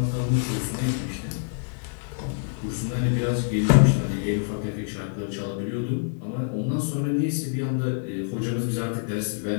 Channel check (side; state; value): right; silent; digital silence